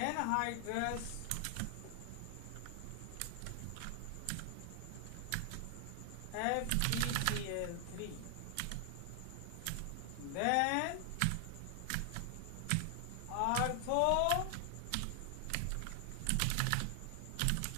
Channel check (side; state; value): both; different; correlation 0.00